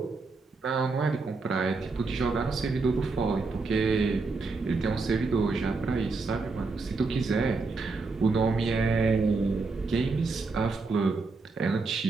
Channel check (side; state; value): left; quieter; 4.0 dB